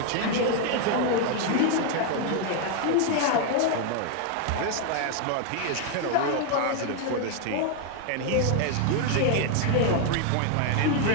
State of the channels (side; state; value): both; different; correlation 0.00